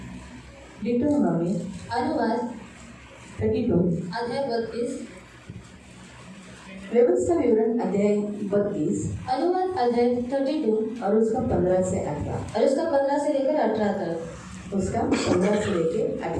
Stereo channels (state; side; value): identical; both; correlation 1.00